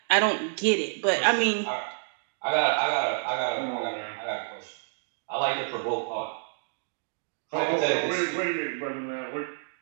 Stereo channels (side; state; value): left; silent; digital silence